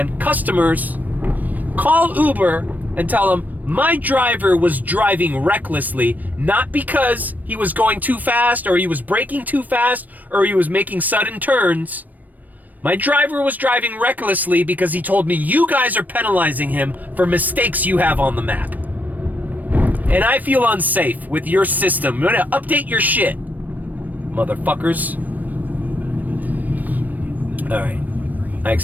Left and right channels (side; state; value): left; late; 0.083 ms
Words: Customers, call Uber and tell them, "My driver was driving recklessly, not because he was going too fast or he was braking too fast or he was making sudden turns. My driver was driving recklessly because he told me you guys are penalizing him for mistakes you have on the map. And I feel unsafe with your system. You're gonna update your shit, motherfuckers." All right. I